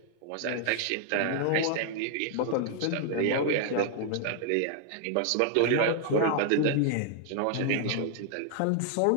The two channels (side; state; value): both; different; correlation 0.00